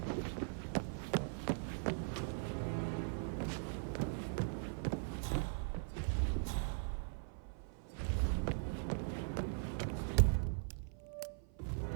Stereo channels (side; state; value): left; silent; 51 dB below the other